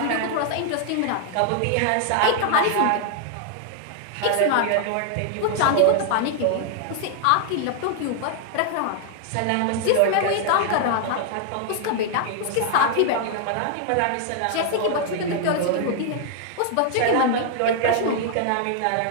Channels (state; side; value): different; both; correlation 0.00